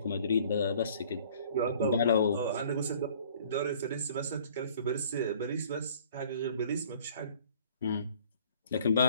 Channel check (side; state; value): both; inverted; correlation -0.54